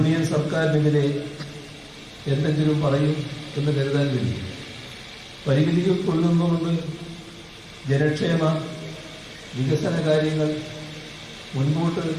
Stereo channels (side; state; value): both; identical; correlation 1.00